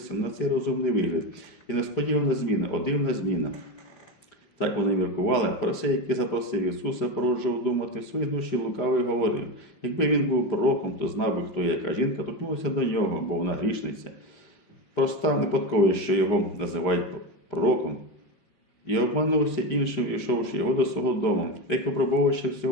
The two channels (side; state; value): right; late; 5.0 ms